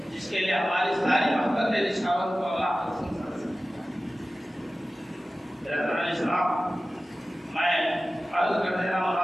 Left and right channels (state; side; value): normal; both; correlation 0.96